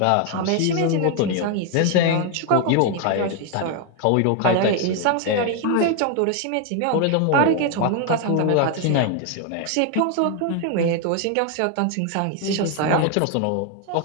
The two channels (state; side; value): different; both; correlation 0.01